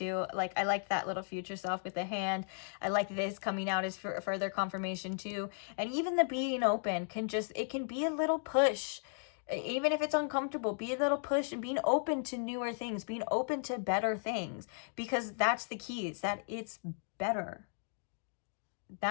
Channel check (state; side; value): silent; right; digital silence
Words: Like, I like that little future self with the hand. I like this coming out as further confirmation too. And even the being open it can be a little push. Even if it's uncomfortable, be a little push and being open to newer things, being open to better things, because that's the key, is that it's better.